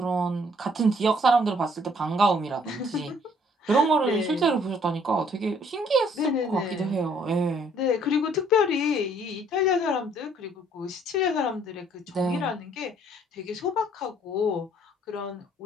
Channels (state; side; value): normal; both; correlation 0.62